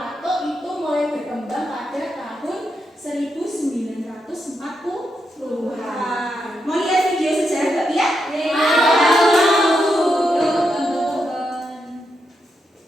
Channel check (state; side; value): normal; both; correlation 0.83